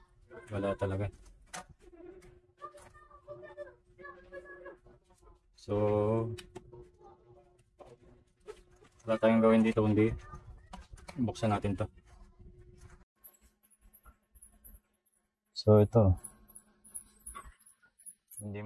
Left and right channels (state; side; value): identical; both; correlation 1.00